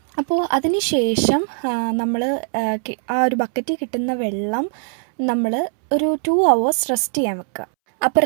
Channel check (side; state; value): left; silent; 65 dB below the other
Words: അപ്പോൾ അതിന് ശേഷം നമ്മൾ ആ ഒരു ബക്കറ്റിൽ കിട്ടുന്ന വെള്ളം നമ്മൾ ഒരു 2 hours റെസ്റ്റ് ചെയ്യാൻ വെക്കുക. അപ്പോൾ